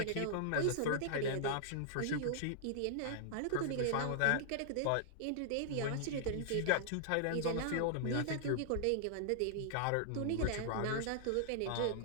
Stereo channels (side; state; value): both; different; correlation -0.01